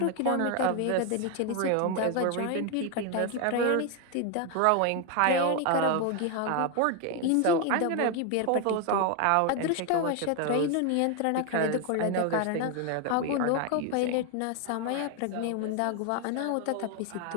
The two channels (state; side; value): different; both; correlation 0.01